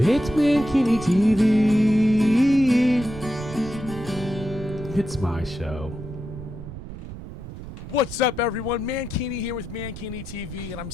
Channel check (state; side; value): noise; right; rumble, 12 dB below the sound